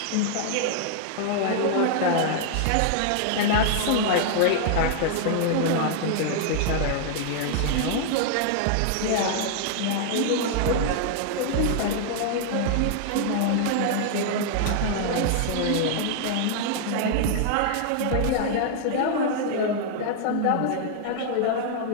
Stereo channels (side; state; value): both; different; correlation -0.01